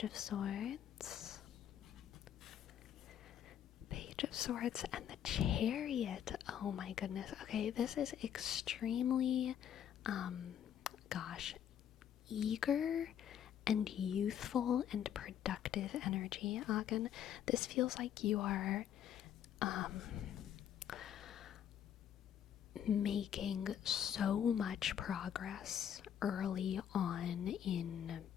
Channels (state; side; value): quieter; right; 9.6 dB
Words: of Swords, and the Chariot. Oh my goodness. Okay, this is extremely, eager and youthful and productive energy, Agen. This feels like you are making so much progress early on in